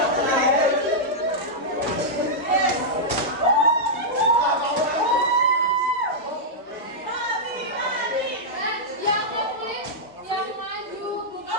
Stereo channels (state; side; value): normal; both; correlation -0.08